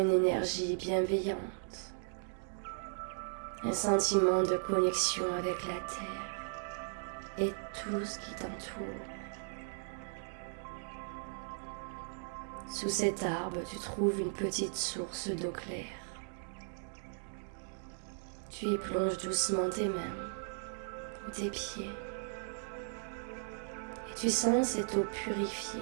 énergie bienveillante, un sentiment de connexion avec la terre et tout ce qui t'entoure. Sous cet arbre, tu trouves une petite source d'eau claire. Tu y plonges doucement tes mains ou tes pieds et tu sens cette eau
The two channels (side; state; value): left; silent; digital silence